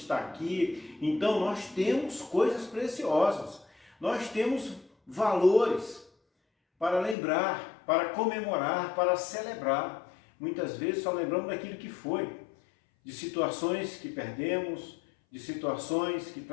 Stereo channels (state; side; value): drops out; right; at 7.2 s